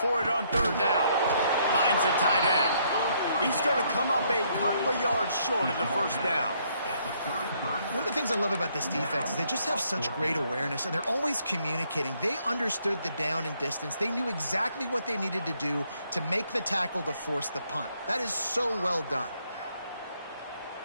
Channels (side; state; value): both; inverted; correlation -0.70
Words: it on third down. Finds the tight end. He's going to come up a couple of yards short of the first down. One of the things I love about this defense is they just have such great awareness, and they're always communicating. They understood the down and distance. They knew exactly what they needed to do to make the tackle to force the punt. That is so well done.